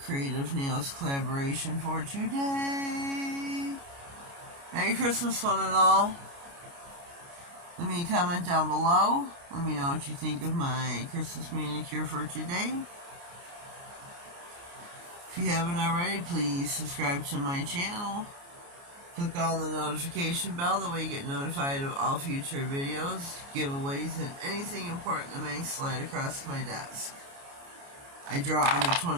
Creativenailz collaboration for today. Merry Christmas, one and all. Let me comment down below. Let me know what you think of my Christmas manicure for today. If you haven't already, please subscribe to my channel. Click on the notification bell, that way you get notified of all future videos, giveaways, and anything important that may slide across my desk. I draw on the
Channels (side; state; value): left; late; 29 ms